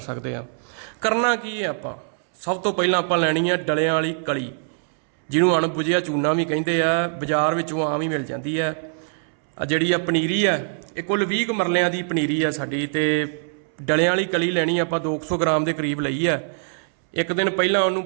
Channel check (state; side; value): silent; left; 63 dB below the other